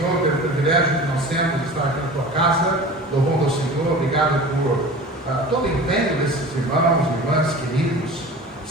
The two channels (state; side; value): normal; both; correlation 0.38